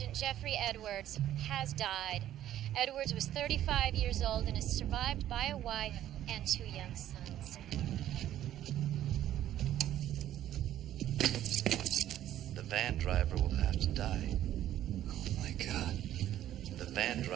Jeffrey Edwards, has died. Edwards was 35 years old and is survived by a wife and two young sons. The van driver will have to die. Oh, my God. The van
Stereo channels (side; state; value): left; quieter; 12.2 dB